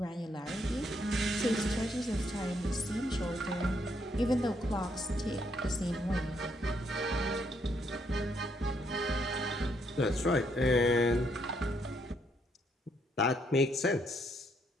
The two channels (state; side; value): normal; both; correlation 0.73